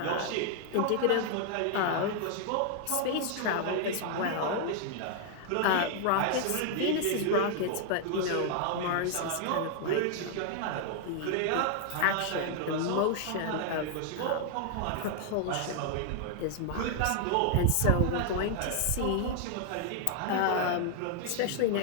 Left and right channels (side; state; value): both; different; correlation 0.00